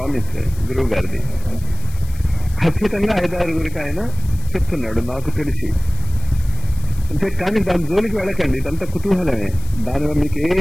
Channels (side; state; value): left; noise; hiss, 20 dB below the sound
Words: గురువు గారిది. ఖచ్చితంగా 5-6 ఆయన చెప్తున్నాడు నాకు తెలిసి. అంటే కానీ దాని జోలికి వెళ్ళకండి, ఇదంతా కుతూహలమే, దానివల్ల మీకు